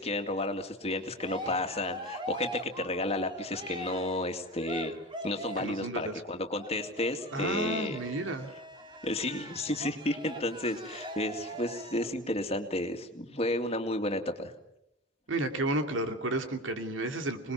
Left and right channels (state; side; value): normal; both; correlation 0.31